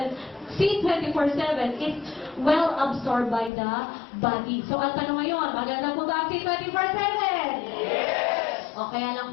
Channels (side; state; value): right; drops out; at 3.5 s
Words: C24/7 is well absorbed by the body. So, ang tanong ngayon, maganda po ba ang C24/7? O kaya lang